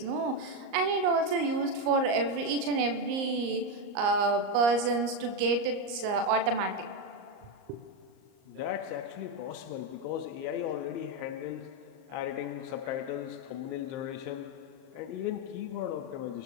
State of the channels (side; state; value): left; late; 38 ms